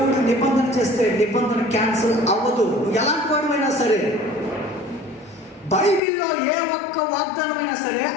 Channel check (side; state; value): right; drops out; at 6.0 s